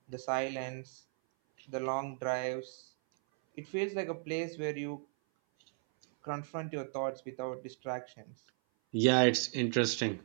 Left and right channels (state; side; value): silent; left; 54 dB below the other